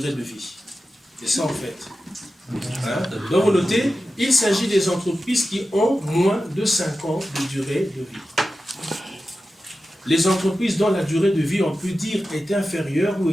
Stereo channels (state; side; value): normal; both; correlation 0.93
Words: de vie. C'est ça en fait. Hein? Donc vous notez, il s'agit des entreprises qui ont moins de 5 ans de durée de vie. Les entreprises dont la durée de vie, on peut dire, est inférieure ou